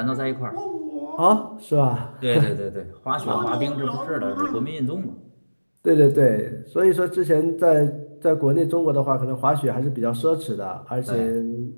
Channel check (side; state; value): both; inverted; correlation -1.00